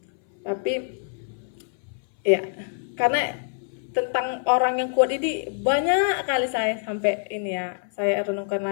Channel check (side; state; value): right; silent; 61 dB below the other